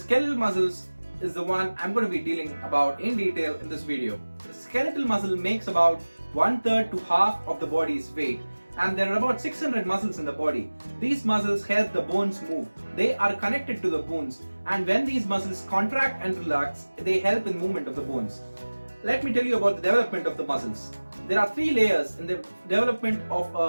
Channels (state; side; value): inverted; both; correlation -1.00